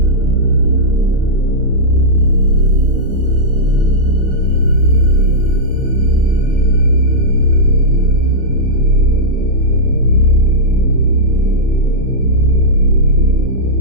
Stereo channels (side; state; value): both; normal; correlation -0.11